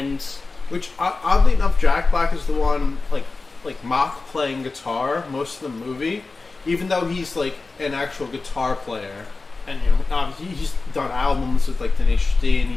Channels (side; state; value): right; quieter; 3.8 dB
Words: which oddly enough, Jack Black is the one like mock playing guitar most of the movie, even though he's like an actual guitar player, and he's done albums with like Tenacious D, and